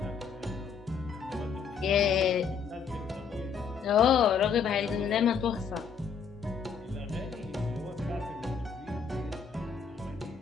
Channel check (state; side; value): quieter; right; 6.3 dB